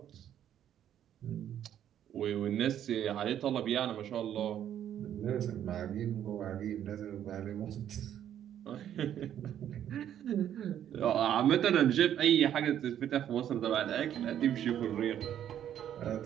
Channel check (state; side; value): quieter; left; 10.4 dB